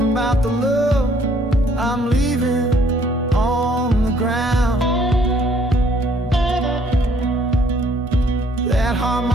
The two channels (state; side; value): normal; both; correlation 0.63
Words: about the love I'm leaving on the ground. That